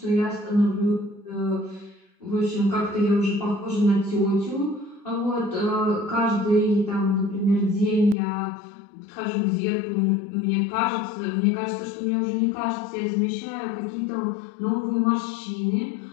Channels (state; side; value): drops out; right; at 8.2 s